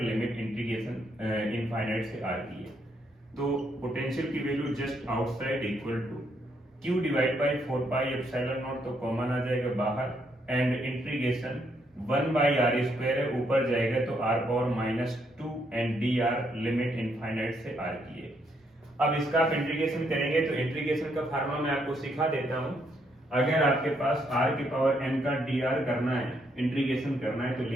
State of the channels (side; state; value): both; normal; correlation 0.74